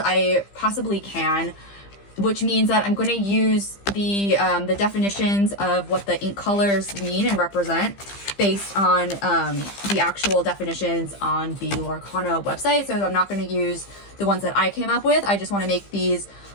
possibly can, which means that I'm going to use the definitions of what the ink colors mean and represent based on the actual definitions on the Lorcana website. So I'm not going to use the ones that I came up with. I just want to make these,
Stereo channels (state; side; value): late; right; 15 ms